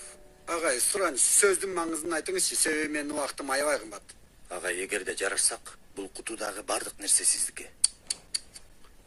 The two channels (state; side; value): identical; both; correlation 1.00